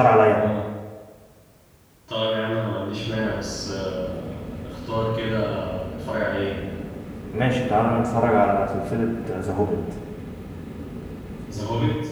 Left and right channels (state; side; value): identical; both; correlation 1.00